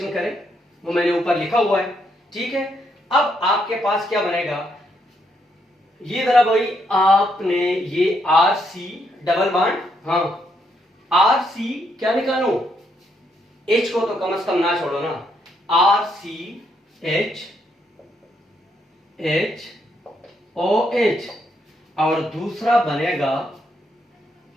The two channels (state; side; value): normal; both; correlation 0.76